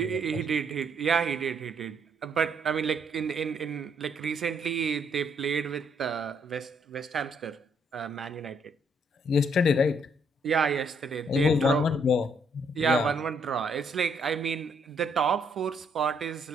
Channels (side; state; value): both; normal; correlation 0.70